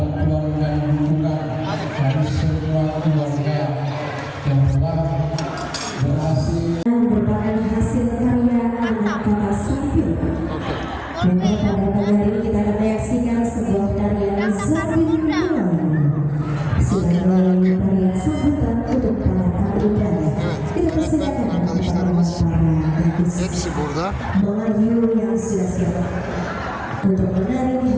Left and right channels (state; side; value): identical; both; correlation 1.00